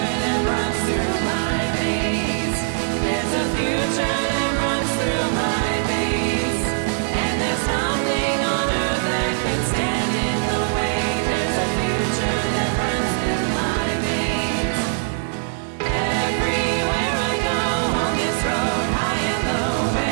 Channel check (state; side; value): silent; left; digital silence